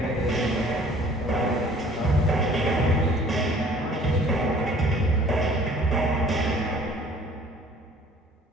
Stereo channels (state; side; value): normal; both; correlation 0.53